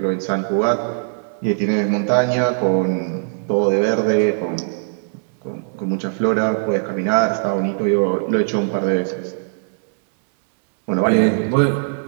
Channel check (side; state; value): left; silent; digital silence